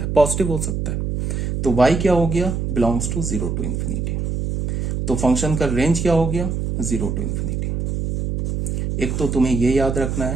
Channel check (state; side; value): noise; right; hum, 1 dB below the sound